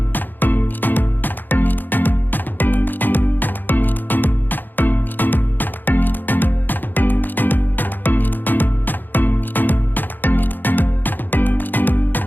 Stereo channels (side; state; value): right; late; 0.089 ms